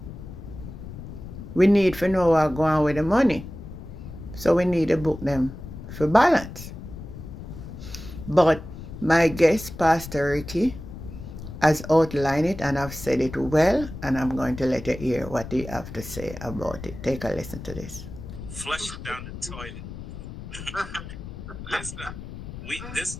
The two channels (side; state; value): left; noise; rumble, 11 dB below the sound